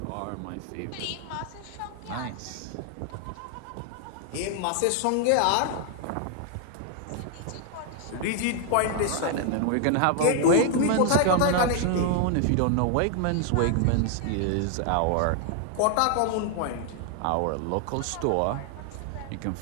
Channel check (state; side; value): different; both; correlation 0.00